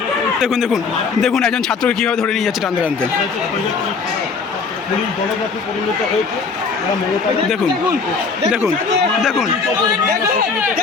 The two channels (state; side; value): quieter; right; 4.9 dB